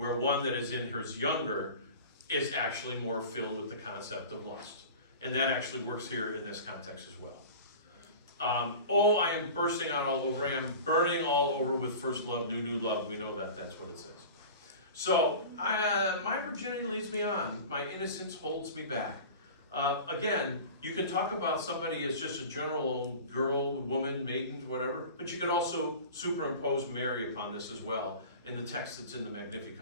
one that is in his younger is actually more filled with the concept of lust. And that actually works here in this context as well. Oh, I am bursting out all over. I am burning all over with first love, new love. We know that that's what it says. So, my virginity leads me on. My innocence holds me back. Again, you can talk about somebody as just a general girl, woman, maiden, whatever, but you could also superimpose Mary upon this as well in the text that's in the Magnificat.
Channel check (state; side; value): inverted; both; correlation -0.37